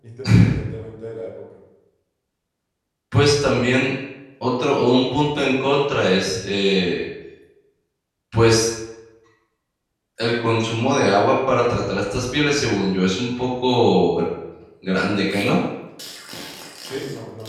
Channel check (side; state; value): both; identical; correlation 1.00